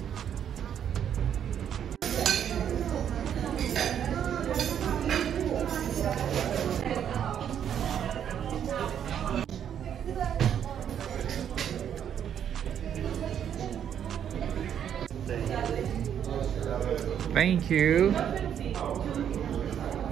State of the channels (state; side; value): quieter; left; 9.1 dB